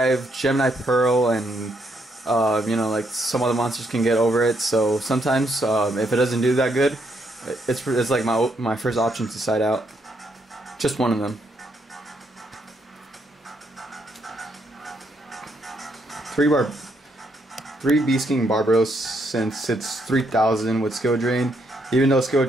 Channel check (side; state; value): both; normal; correlation 0.75